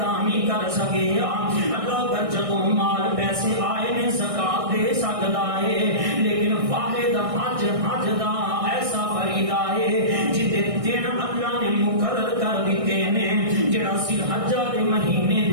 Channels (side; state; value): left; late; 1.6 ms